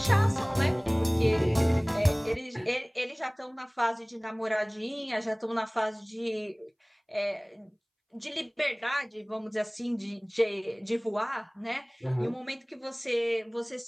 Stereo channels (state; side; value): identical; both; correlation 1.00